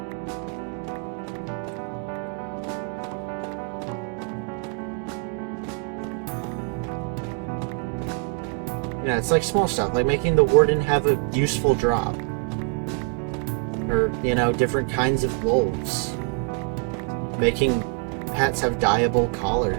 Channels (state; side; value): quieter; left; 29.9 dB